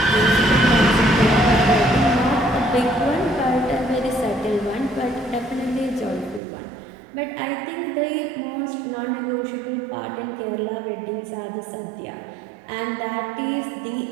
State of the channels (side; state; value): left; drops out; at 6.4 s